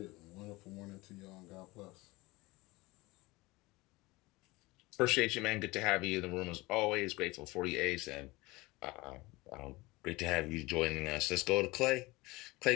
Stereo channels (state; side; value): quieter; right; 21.9 dB